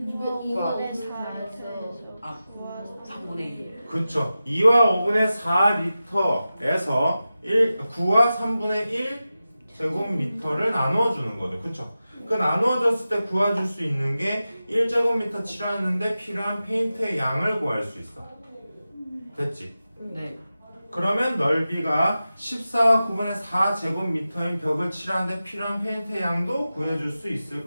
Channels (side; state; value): both; inverted; correlation -0.94